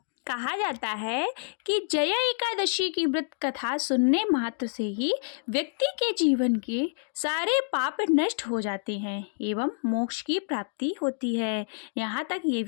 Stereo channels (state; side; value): silent; right; digital silence